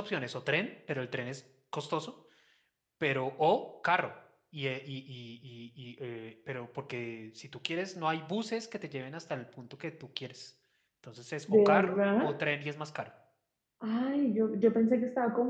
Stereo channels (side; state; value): both; identical; correlation 1.00